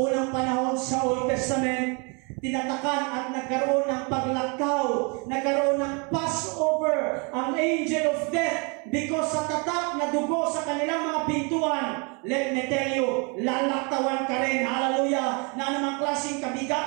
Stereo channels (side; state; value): left; quieter; 33.0 dB